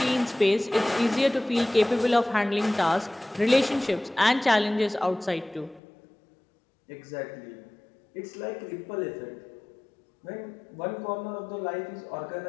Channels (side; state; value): right; drops out; at 5.8 s